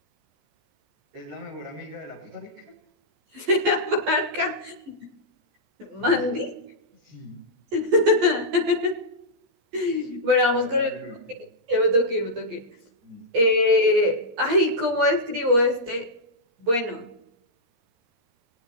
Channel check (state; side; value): late; left; 13 ms